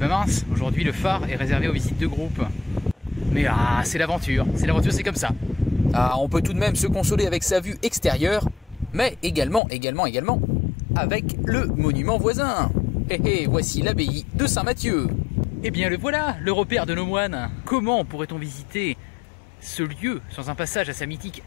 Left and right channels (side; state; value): right; drops out; at 9.6 s